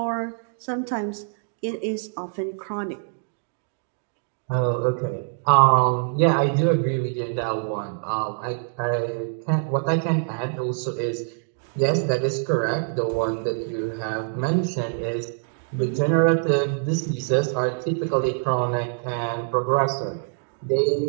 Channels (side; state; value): left; silent; digital silence